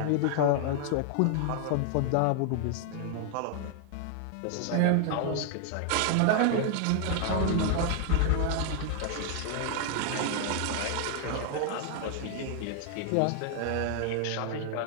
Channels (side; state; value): both; different; correlation 0.00